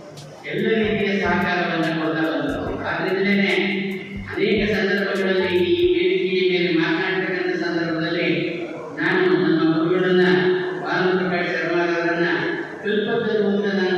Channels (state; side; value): identical; both; correlation 1.00